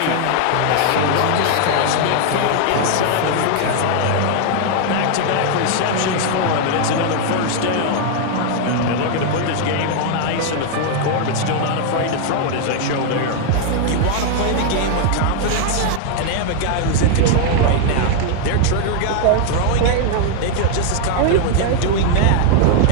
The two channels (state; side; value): different; both; correlation 0.00